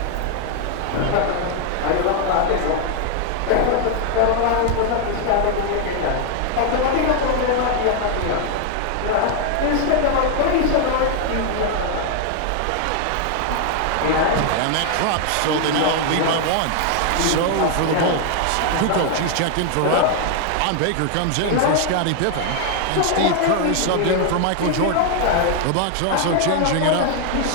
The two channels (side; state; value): both; different; correlation 0.00